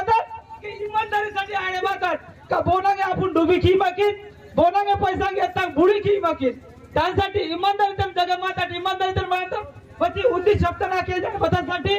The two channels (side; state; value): both; identical; correlation 1.00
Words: की ईमानदारीसाठी अरे मातर का बोनागे आपण डुबी की माकीत बोनागे पैसा घेता बुडी की माकीत त्यासाठी इमानदारी तर जग माता इमानदारी तर माता पती उद्दी शब्द ना केले बतासाठी